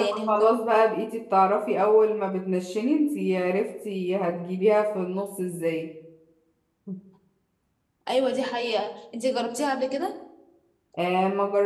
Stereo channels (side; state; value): both; identical; correlation 1.00